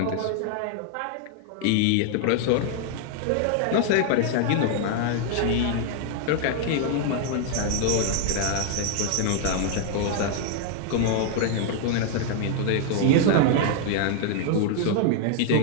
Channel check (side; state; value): both; different; correlation 0.00